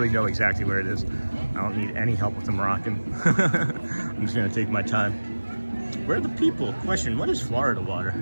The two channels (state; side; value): inverted; both; correlation -1.00